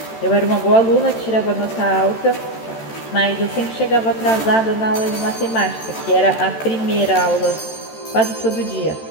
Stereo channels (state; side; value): late; right; 13 ms